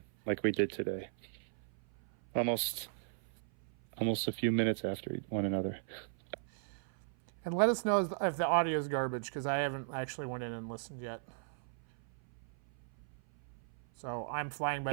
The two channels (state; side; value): silent; left; 53 dB below the other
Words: like we did today. Almost a few minutes after one another. And let us know if the audio is garbage, because I haven't actually went in and listened yet. So I'm flying by